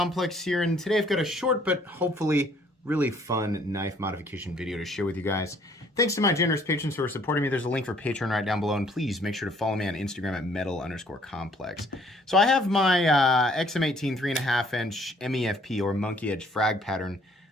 here, and today I've got a short but hopefully really fun knife modification video to share with you guys. Thanks to my generous patrons who are supporting me. There's a link for Patreon right down below, and please make sure to follow me on Instagram at metal_complex. So I have my XM-18 3.5 inch MEFP or Monkey Edge frag pattern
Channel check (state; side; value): normal; both; correlation 0.61